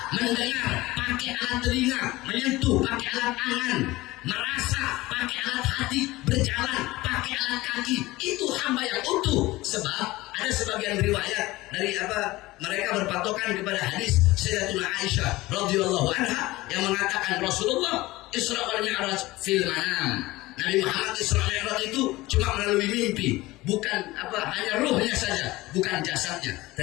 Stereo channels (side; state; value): right; quieter; 19.3 dB